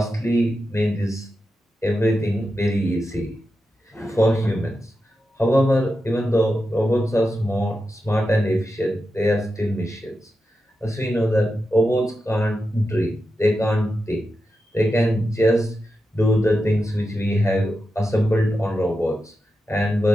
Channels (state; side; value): normal; both; correlation 0.89